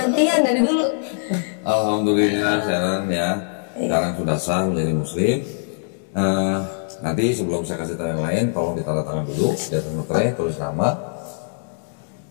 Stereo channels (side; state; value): right; silent; 64 dB below the other